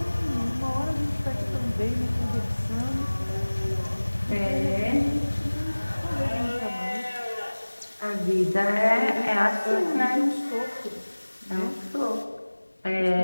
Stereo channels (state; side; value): inverted; both; correlation -1.00